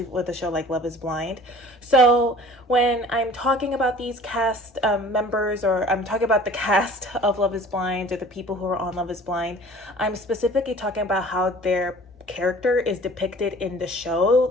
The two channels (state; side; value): normal; both; correlation 0.47